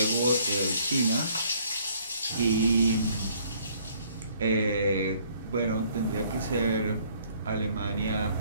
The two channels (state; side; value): inverted; both; correlation -0.61